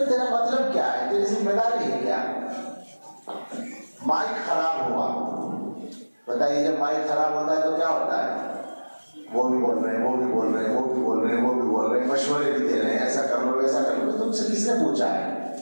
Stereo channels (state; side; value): inverted; both; correlation -1.00